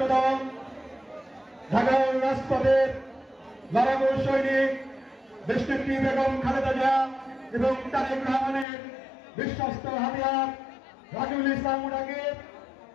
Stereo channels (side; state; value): right; drops out; at 8.7 s